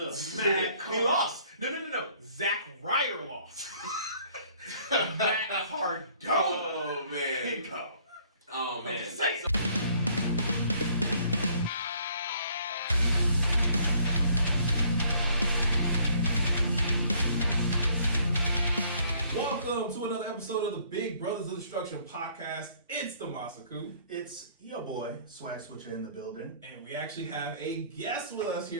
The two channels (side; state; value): both; inverted; correlation -0.60